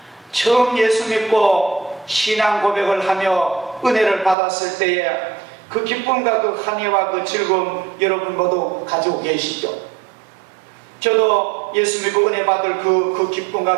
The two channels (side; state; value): left; drops out; at 4.4 s